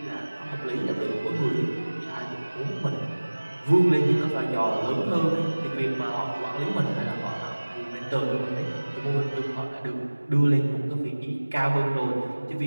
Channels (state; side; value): inverted; both; correlation -1.00